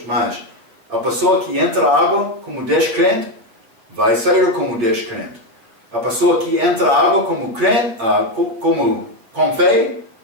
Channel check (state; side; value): late; left; 8.8 ms